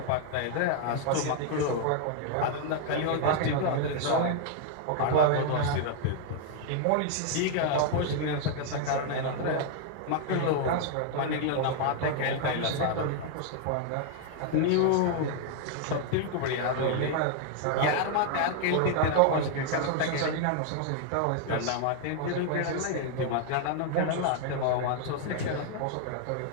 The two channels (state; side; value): different; both; correlation 0.00